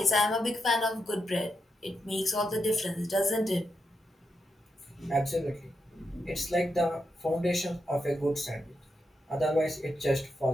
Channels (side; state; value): both; normal; correlation 0.84